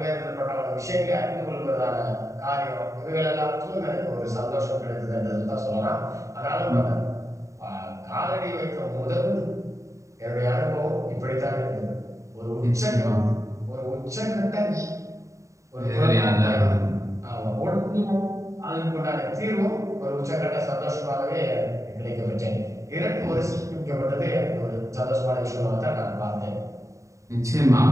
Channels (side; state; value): left; late; 0.15 ms